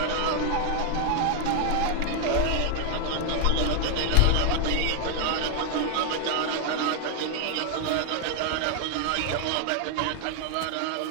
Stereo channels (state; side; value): different; both; correlation 0.00